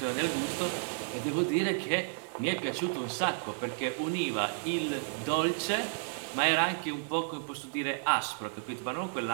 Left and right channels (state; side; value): silent; left; digital silence